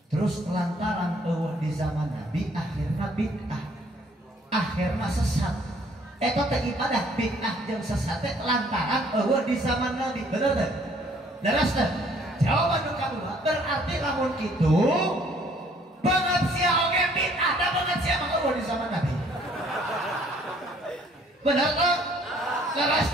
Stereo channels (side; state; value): both; normal; correlation 0.61